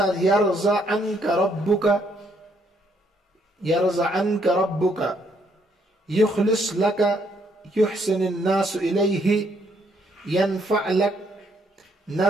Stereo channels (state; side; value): normal; both; correlation 0.70